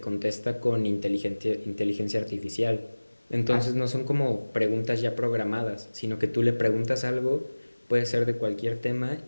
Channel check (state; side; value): inverted; both; correlation -1.00